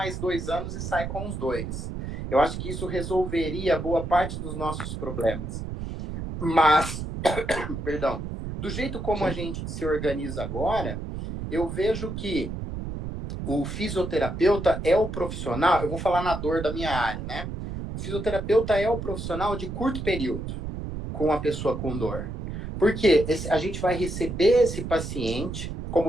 2 anos e sai com os dois. Eu acho que isso resolveria boa parte dos nossos problemas. Mas, perdão, do jeito como a Sim. gente se organiza agora, eu vejo que o fisioterapeuta é o profissional, eu vou falar na dor da minha área, né? O fisioterapeuta é o profissional de curto período com a pessoa com dor. Porque a gente vai receber esse paciente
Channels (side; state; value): right; noise; rumble, 6 dB below the sound